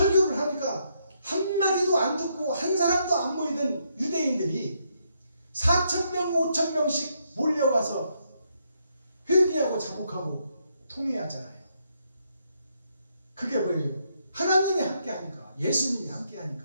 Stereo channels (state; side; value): inverted; both; correlation -0.76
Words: 하니까 한마디도 안 듣고 한 사람도 안 모이던 유대인들이 4,000명 5,000명씩 몰려와서 회개하고 자복하고 통회하잖아요. 그게 뭐예요? 하나님이 함께 하니까, 예수님이 함께